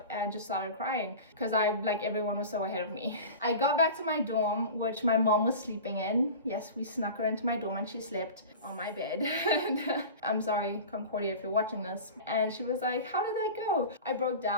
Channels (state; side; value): inverted; both; correlation -0.35